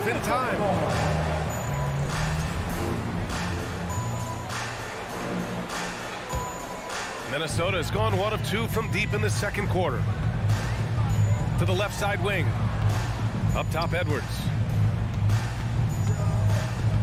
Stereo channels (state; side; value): identical; both; correlation 1.00